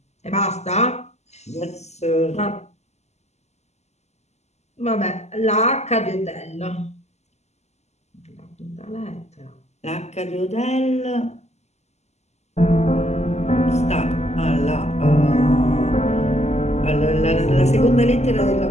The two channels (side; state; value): right; late; 0.32 ms